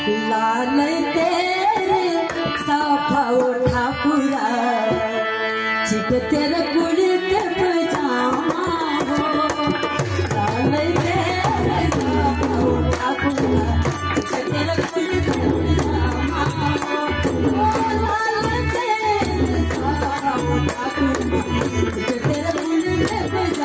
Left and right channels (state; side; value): identical; both; correlation 1.00